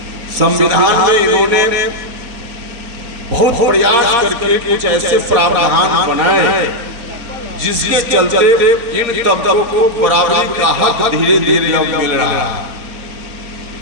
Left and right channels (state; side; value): late; left; 4.2 ms